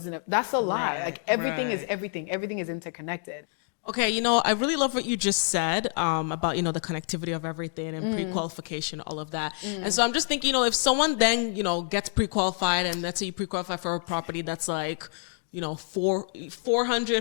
That's a lie. Like, everything is everything. Everything is interconnected. Okay, I really love what you just said about, the connectivity of everything and pre-qualification, all of that. And so I'm just thinking, if someone then, gets pre-qualified, and let's say you pre-qualify for a property that's like,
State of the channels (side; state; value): right; silent; 56 dB below the other